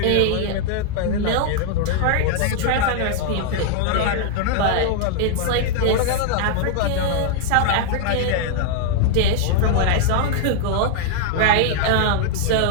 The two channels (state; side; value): different; both; correlation 0.00